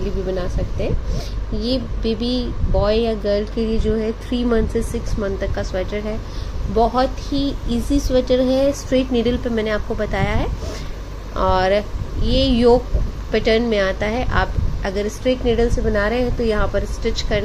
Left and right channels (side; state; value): both; identical; correlation 1.00